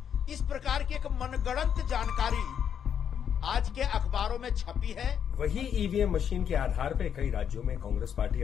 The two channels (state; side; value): quieter; right; 8.3 dB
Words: इस प्रकार की एक मनगढ़ंत जानकारी आज के अखबारों में छपी है। वही ईवीएम मशीन के आधार पर कई राज्यों में कांग्रेस पार्टी